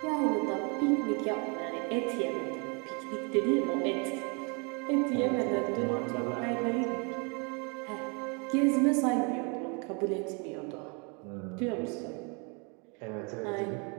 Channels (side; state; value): left; quieter; 33.8 dB